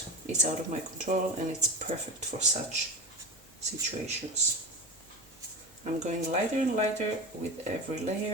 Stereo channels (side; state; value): both; normal; correlation 0.25